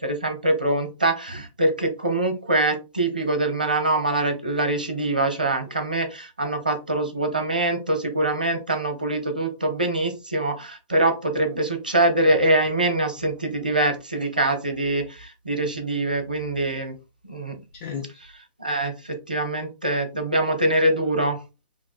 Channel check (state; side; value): inverted; both; correlation -0.49